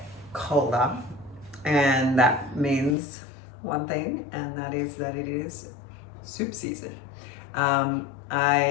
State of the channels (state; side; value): drops out; right; at 3.0 s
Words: colder, and that means one thing, and that is that it is soup season.